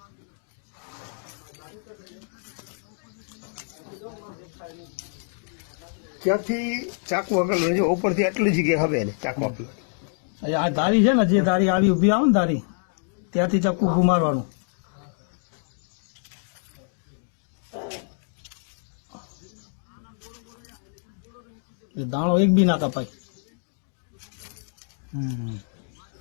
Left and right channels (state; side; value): silent; right; digital silence